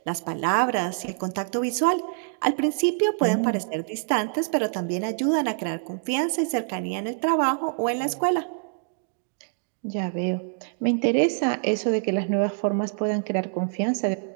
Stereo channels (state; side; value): silent; left; digital silence